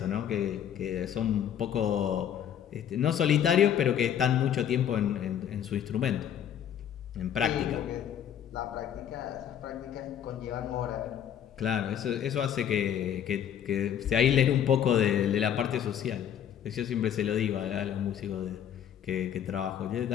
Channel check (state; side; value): quieter; right; 9.5 dB